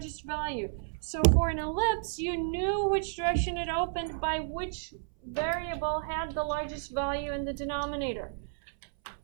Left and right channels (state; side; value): silent; left; 57 dB below the other